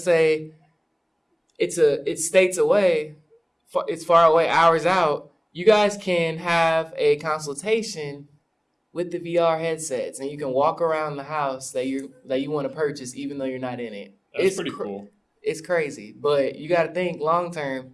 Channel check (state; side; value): identical; both; correlation 1.00